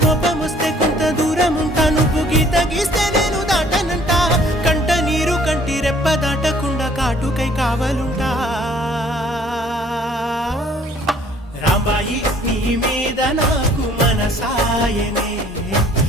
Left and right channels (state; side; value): normal; both; correlation 0.57